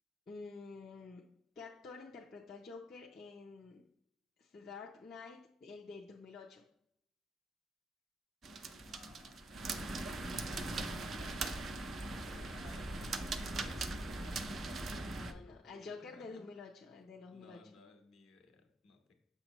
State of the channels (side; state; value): both; normal; correlation 0.77